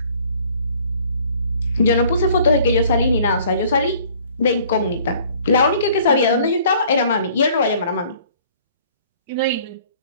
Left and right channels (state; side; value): inverted; both; correlation -0.55